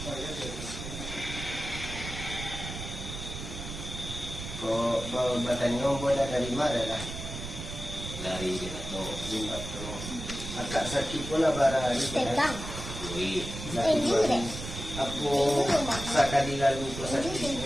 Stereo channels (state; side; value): noise; right; rumble, 8 dB below the sound